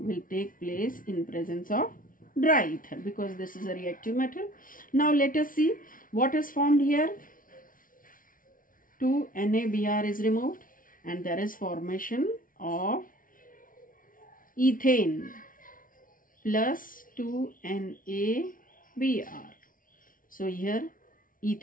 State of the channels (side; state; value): right; late; 0.39 ms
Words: take place in presence of dry ether because this is a reactive metal. Now let us see what is formed here. 2 NaBr is removed and there is formation of ethane plus 2 NaBr. So here